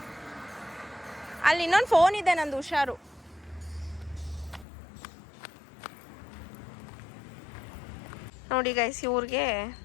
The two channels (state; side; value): drops out; right; at 4.7 s